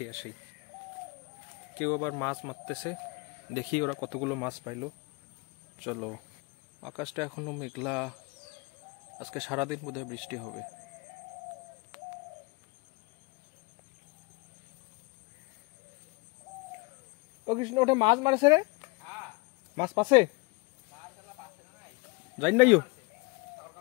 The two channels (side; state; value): right; quieter; 28.0 dB